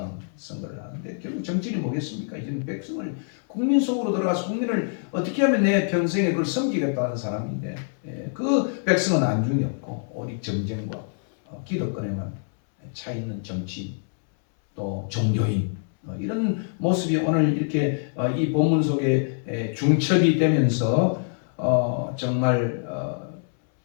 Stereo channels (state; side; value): silent; right; 62 dB below the other